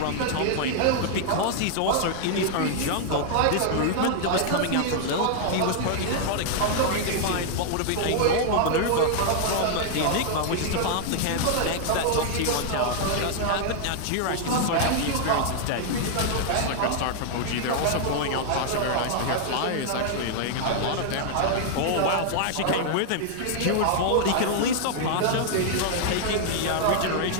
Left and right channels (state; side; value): different; both; correlation 0.00